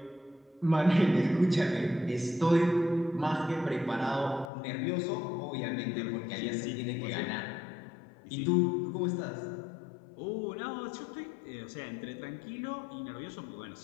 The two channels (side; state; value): right; drops out; at 4.5 s